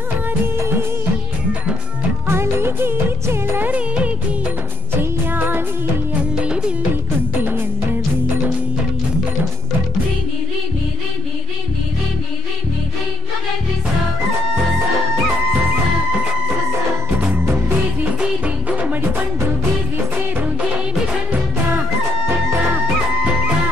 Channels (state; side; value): normal; both; correlation 0.61